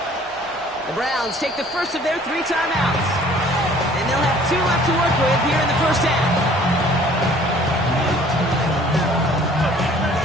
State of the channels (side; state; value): both; normal; correlation 0.54